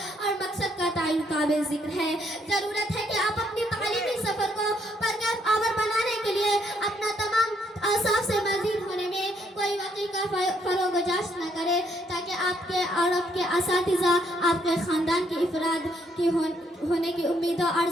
اور مقصد کا تعین قابل ذکر ہے۔ ضرورت ہے کہ آپ اپنی تعلیمی سفر کو پرکیف آور بنانے کے لیے اپنا تمام اوصاف سے مزید ہونے میں کوئی واقعی کا فروغ و جاش نہ کرے، تاکہ آپ کے اور آپ کے اساتذہ آپ کے خاندان کی افراد کی ہونے کی امیدوں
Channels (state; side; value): normal; both; correlation 0.71